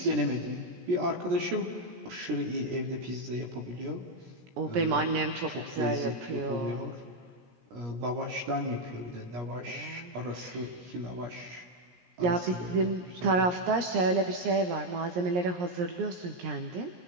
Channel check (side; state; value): left; late; 17 ms